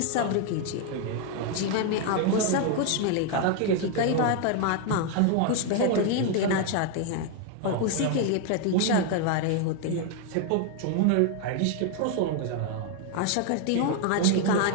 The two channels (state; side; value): different; both; correlation 0.01